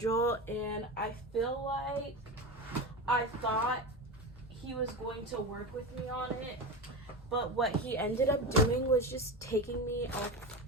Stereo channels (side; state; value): both; normal; correlation 0.23